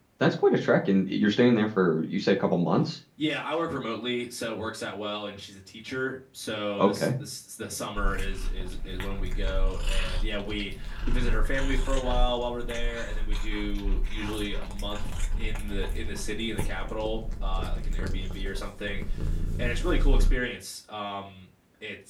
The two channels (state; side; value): identical; both; correlation 1.00